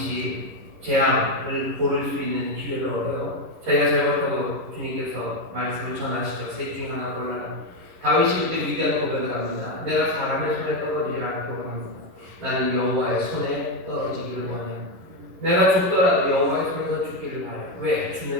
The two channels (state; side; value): late; left; 11 ms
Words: 재앙을 고를 수 있는 기회를 얻어요. 자기가 잘못하고 주님께서 말씀을 전하시죠. 셋 중 하나 골라라. 다윗이 그때 위대한 고백을 합니다. 내가 사람의 손에 떨어지지 않기를 원합니다. 나는 여호와의 손에 떨어지기를 원해요. 내가 죽더라도 여호와의 손에서 죽기를 바래요. 왜?